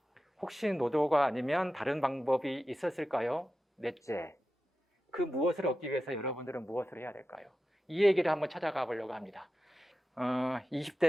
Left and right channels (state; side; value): normal; both; correlation 0.92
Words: 혹시 노조가 아니면 다른 방법이 있었을까요? 넷째, 그 무엇을 얻기 위해서 여러분들은 무엇을 해야 될까요? 이 얘기를 한번 찾아가 보려고 합니다.